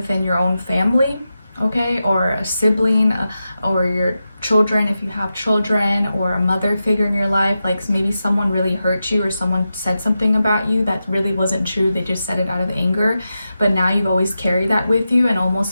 your own family, okay, or a sibling, or your children, if you have children, or a mother figure in your life. Like maybe someone really hurt you, or someone said something about you that really wasn't true. They just said it out of anger, but now you've always carried that with you, and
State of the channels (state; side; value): inverted; both; correlation -0.90